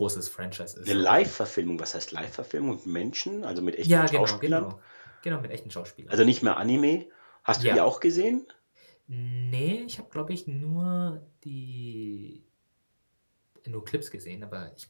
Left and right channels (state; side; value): inverted; both; correlation -1.00